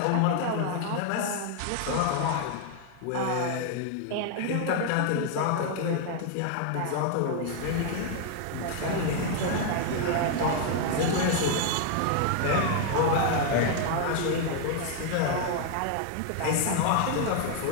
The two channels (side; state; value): both; different; correlation 0.00